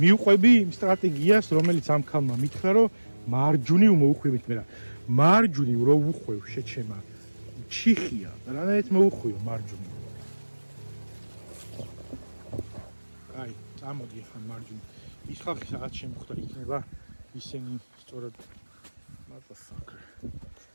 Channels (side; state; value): both; inverted; correlation -1.00